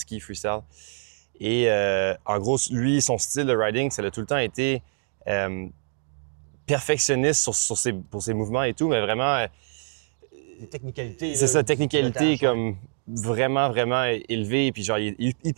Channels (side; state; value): left; silent; digital silence